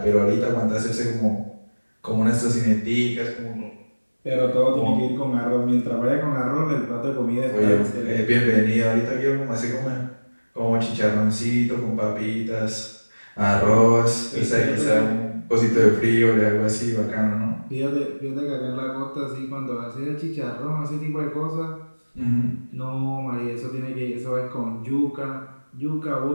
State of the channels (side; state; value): both; inverted; correlation -1.00